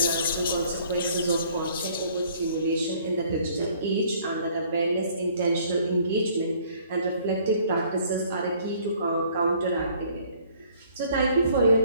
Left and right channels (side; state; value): both; inverted; correlation -0.58